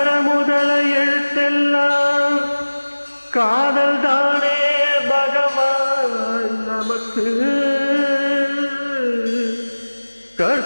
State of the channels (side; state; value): both; inverted; correlation -1.00